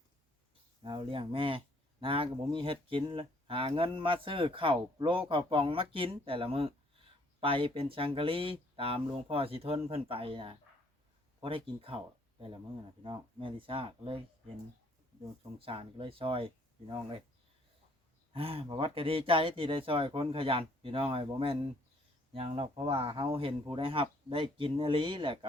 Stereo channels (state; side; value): normal; both; correlation 0.63